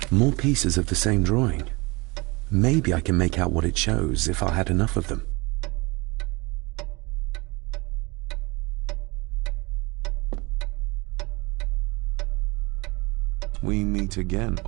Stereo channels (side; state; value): left; quieter; 25.6 dB